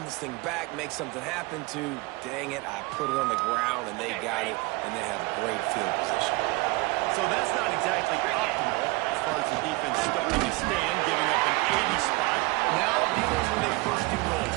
this thing back, make something happen to, dang it, I put it on the ground, and they got it, and they have great field position. So that's not exactly optimal as far as the defense starting to stand, giving up an 80 spot. Now dealing with a 1st and goal.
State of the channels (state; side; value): quieter; left; 23.5 dB